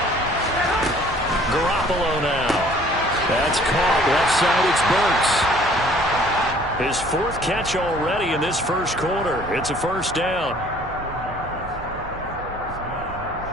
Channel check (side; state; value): right; noise; hum, 17 dB below the sound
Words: Garoppolo now. That's caught. Left side, it's Burks. His 4th catch already in this first quarter. It's a first down.